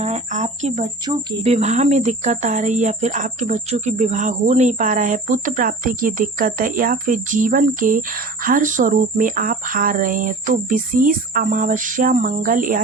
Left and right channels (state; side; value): quieter; left; 3.1 dB